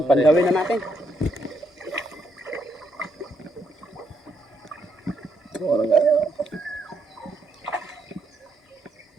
Pandawin na natin.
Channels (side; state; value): both; normal; correlation 0.76